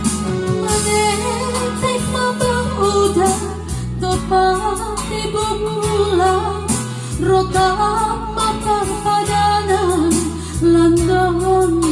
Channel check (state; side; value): identical; both; correlation 1.00